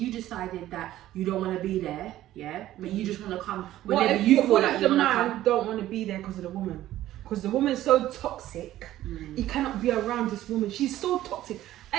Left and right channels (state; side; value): quieter; left; 14.0 dB